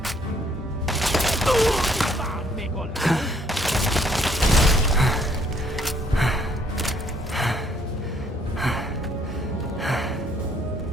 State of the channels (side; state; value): both; normal; correlation 0.65